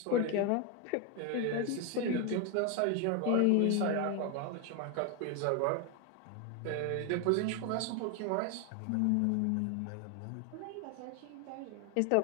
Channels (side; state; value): both; different; correlation 0.01